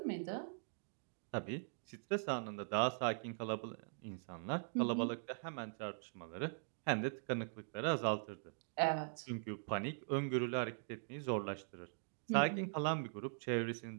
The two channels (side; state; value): left; silent; digital silence